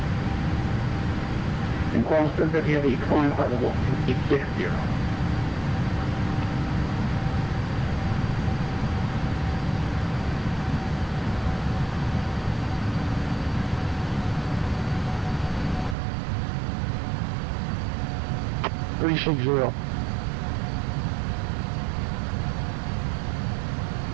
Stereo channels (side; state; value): left; drops out; at 16.0 s